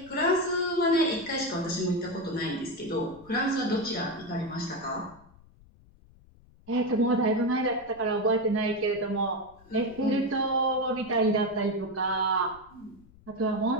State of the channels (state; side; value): noise; left; rumble, 26 dB below the sound